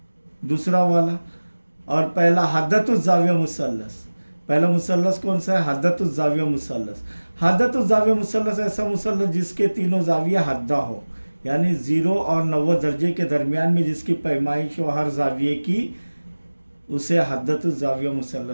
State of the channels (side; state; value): both; inverted; correlation -1.00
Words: दूसरा वाला, और पहला हद्दतुज़ ज़ाविया मुसल्लस। पहला मुसल्लस कौन सा है? हद्दतुज़ ज़ाविया मुसल्लस। हद्दतुज़ ज़ाविया मुसल्लस ऐसा मुसल्लस जिसके तीनों ज़ाविया हद्दा हो, यानी 0 और 90 दर्जे के दरमियान में जिसकी पैमाइश हो हर ज़ाविये की, उसे हद्दतुज़ ज़ाविया